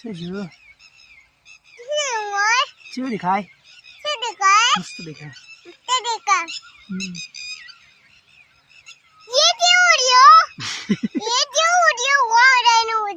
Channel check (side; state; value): both; identical; correlation 1.00